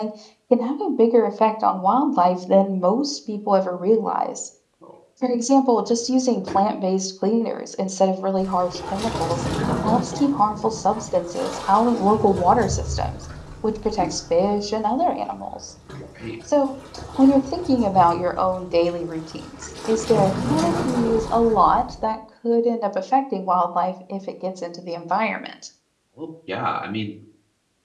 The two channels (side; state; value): both; identical; correlation 1.00